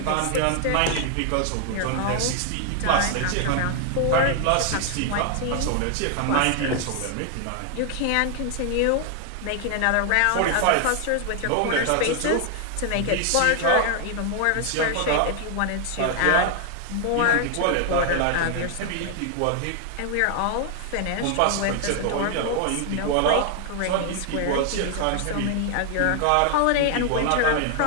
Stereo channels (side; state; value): both; different; correlation 0.00